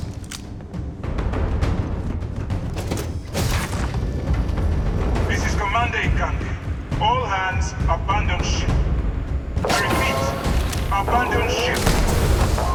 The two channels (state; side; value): identical; both; correlation 1.00